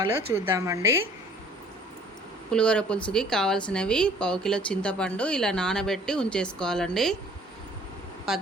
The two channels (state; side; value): normal; both; correlation 0.54